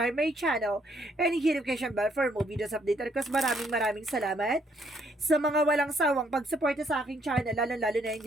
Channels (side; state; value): both; normal; correlation 0.69